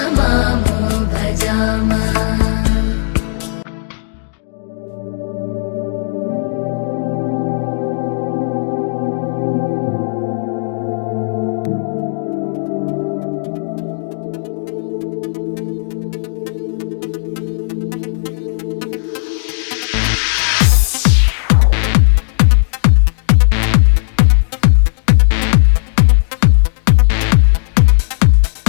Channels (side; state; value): right; silent; 66 dB below the other